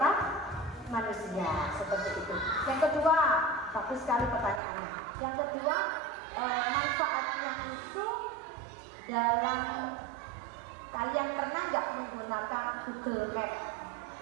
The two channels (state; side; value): drops out; left; at 4.6 s